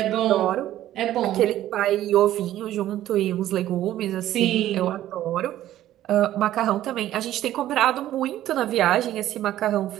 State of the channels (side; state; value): left; quieter; 13.2 dB